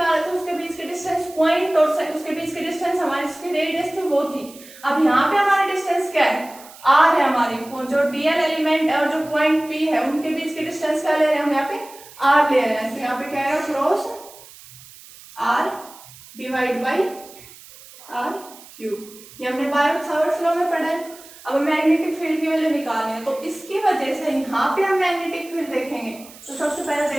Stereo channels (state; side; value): noise; right; hiss, 20 dB below the sound